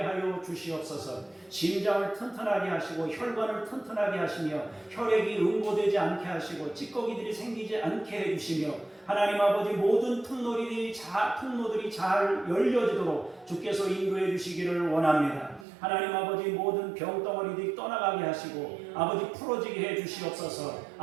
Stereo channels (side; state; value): left; drops out; at 15.7 s